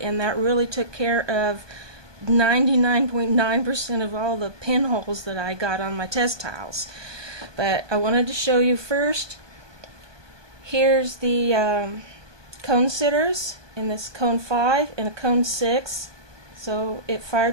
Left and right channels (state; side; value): late; left; 1.2 ms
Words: that really took care of 99.9% of all the pinholes that I got on my test tiles. But I wanted to show you first. Here's the cone sitters in this cone 5 and a cone 6. So it